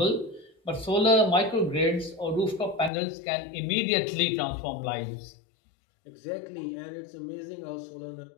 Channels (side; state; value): right; drops out; at 2.9 s